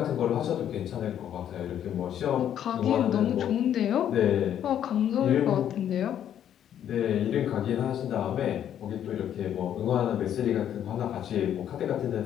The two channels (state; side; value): quieter; right; 10.1 dB